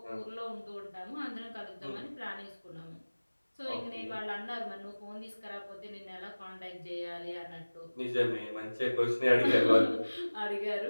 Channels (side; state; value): both; inverted; correlation -1.00